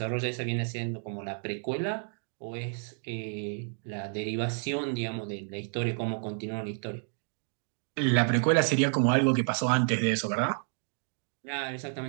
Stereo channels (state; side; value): silent; left; 57 dB below the other